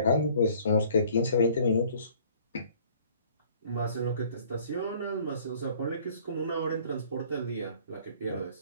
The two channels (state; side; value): inverted; both; correlation -0.55